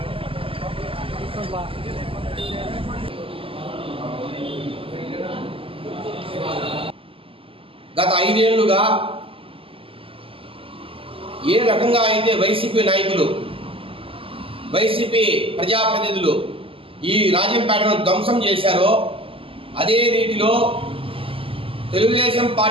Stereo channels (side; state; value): left; late; 0.26 ms